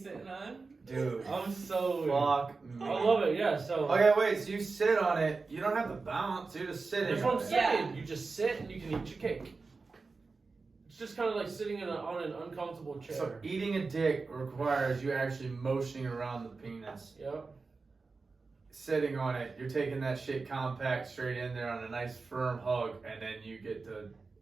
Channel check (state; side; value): quieter; left; 4.2 dB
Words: sitting on. Dude. I'm so. Fuck me. I love it. Yeah. So. Okay, wait, so you sit on it. You don't have to bounce. You're just sitting That's what on I'm it. saying. Yeah. You just sit and you can eat your cake. It's just kind of like sitting on an uncomfortable chair. So eating a dick requires you actually motioning around the penis. Yep. Sitting on it, you're taking that shit compact straight in there on a nice firm hug, and then you get to.